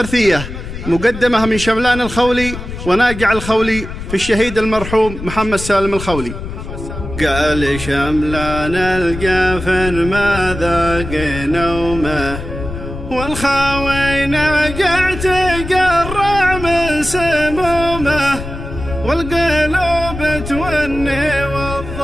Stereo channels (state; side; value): noise; left; rumble, 9 dB below the sound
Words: مقدمة من شملان الخولي وناقع الخولي في الشهيد المرحوم محمد سالم الخولي. قال شملان الجافن ما ذاق نومه، والخاوي ناقع تقرع من سمومه، والقلوب توني